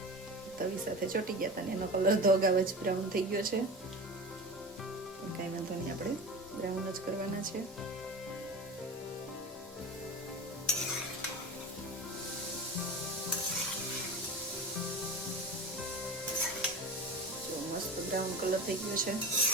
તવી સાથે ચોટી ગયા હતા ને એનો કલર તો અગાઉ જ બ્રાઉન થઈ ગયો છે. કાંઈ વાંધો નહીં, આપણે બ્રાઉન જ કરવાના છે. જો મસ્ત બ્રાઉન કલર થઈ ગયો છે.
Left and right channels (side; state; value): both; normal; correlation 0.30